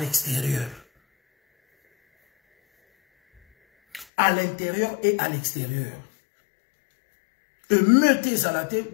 À l'intérieur et à l'extérieur. Meutez à la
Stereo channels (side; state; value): right; drops out; at 4.0 s